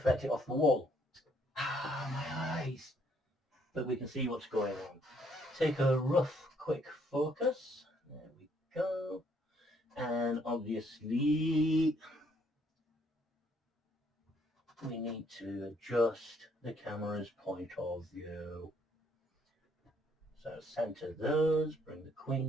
it off the wall. Ah, my eyes. but we can see what's going on. Take a rough, quick focus. There we go. And obviously, we need to adjust the camera's point of view. So center those, bring the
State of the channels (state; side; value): normal; both; correlation 0.67